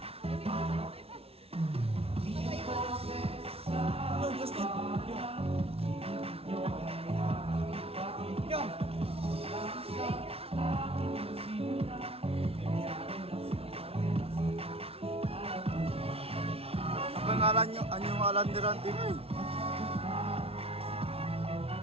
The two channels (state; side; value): late; left; 0.29 ms